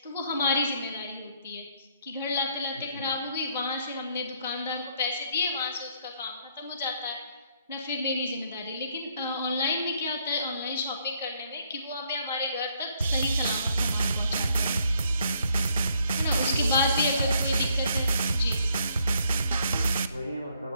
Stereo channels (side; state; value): both; inverted; correlation -0.69